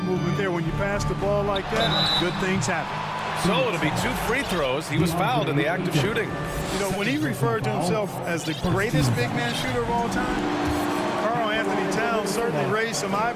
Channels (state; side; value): identical; both; correlation 1.00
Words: movement there. When you pass the ball like that, good things happen. So it'll be 2 free throws. He was fouled in the act of shooting. You know, when he referred to himself as the greatest big man shooter of all time, Karl Anthony Towns certainly raised some